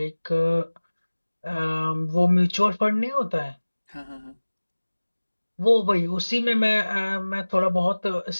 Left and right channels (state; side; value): inverted; both; correlation -1.00